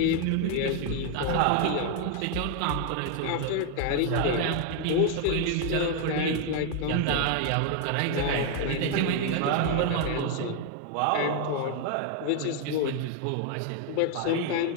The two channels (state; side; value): different; both; correlation 0.01